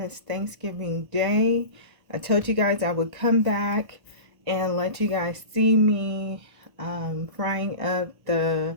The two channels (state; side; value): late; left; 1.3 ms